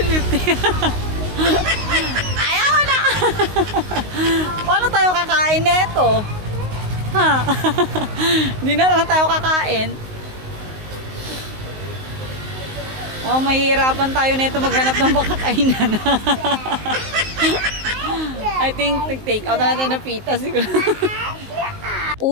Ayaw na! Paano tayo kakain neto? Ha? Hindi na lang tayo kakain. Oh, mahihirapan tayo nito maghanap ng makakainan. I think take out na natin ng pita siguro.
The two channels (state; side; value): late; left; 19 ms